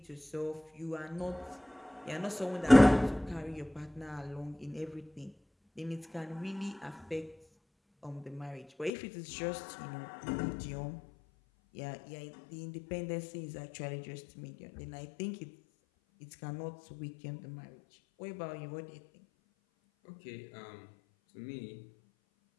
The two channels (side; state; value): right; drops out; at 8.9 s